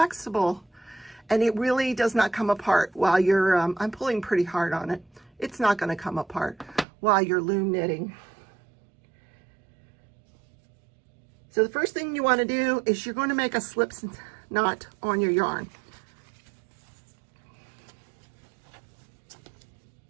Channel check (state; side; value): drops out; left; at 6.9 s